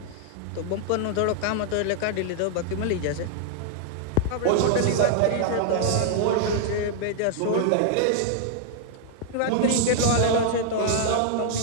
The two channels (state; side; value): different; both; correlation -0.01